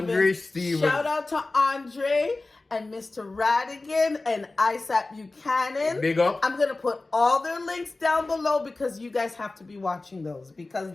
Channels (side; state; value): right; quieter; 3.2 dB